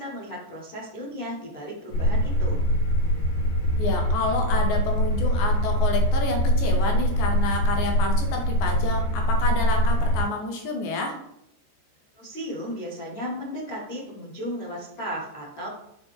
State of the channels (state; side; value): late; right; 14 ms